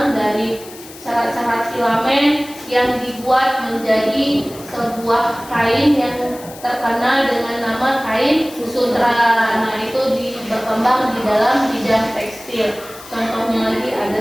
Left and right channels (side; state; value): left; noise; hiss, 18 dB below the sound